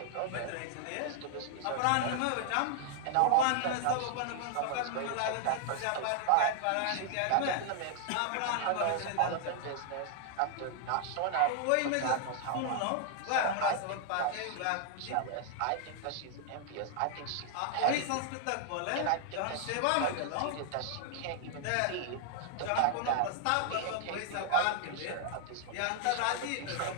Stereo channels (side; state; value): both; different; correlation 0.00